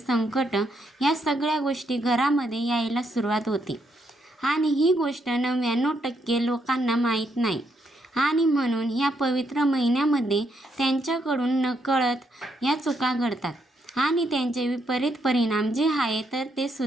या सगळ्या गोष्टी घरामध्ये यायला सुरुवात होते. आणि ही गोष्ट 99% लोकांना माहीत नाही. आणि म्हणून या पवित्र महिन्यामध्ये त्यांच्याकडून नकळत या चुका घडतात. आणि त्यांचे विपरीत परिणाम जे आहे तर ते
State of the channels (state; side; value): normal; both; correlation 0.76